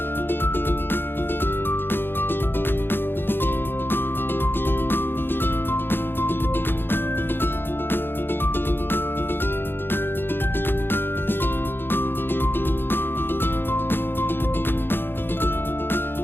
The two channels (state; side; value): late; right; 0.10 ms